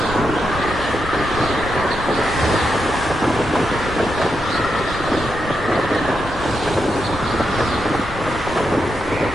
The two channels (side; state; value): both; normal; correlation 0.84